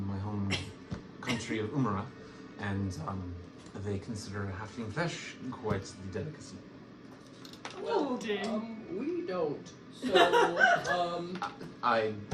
home country of Umara, and they consider halfling flesh quite the delicacy. Well, Oh, dear. we don't. So, I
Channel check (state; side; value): identical; both; correlation 1.00